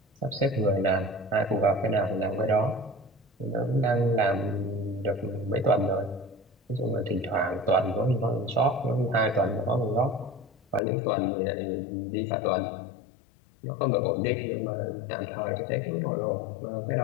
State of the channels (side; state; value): right; drops out; at 10.8 s